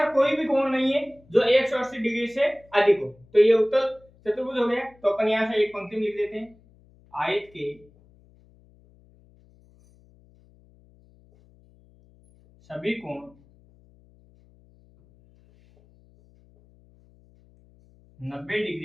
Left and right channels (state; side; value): noise; left; hum, 29 dB below the sound